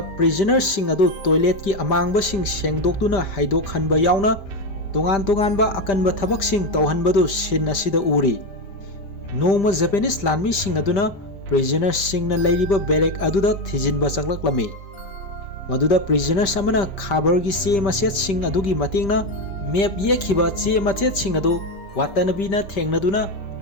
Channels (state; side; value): late; right; 5.1 ms